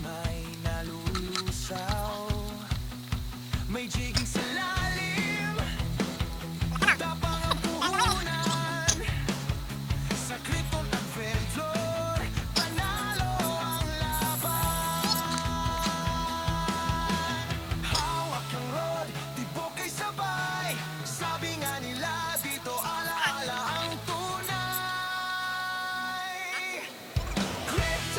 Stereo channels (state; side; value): identical; both; correlation 1.00